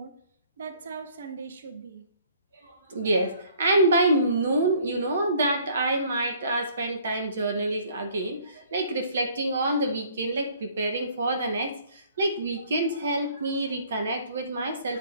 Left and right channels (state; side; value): inverted; both; correlation -0.57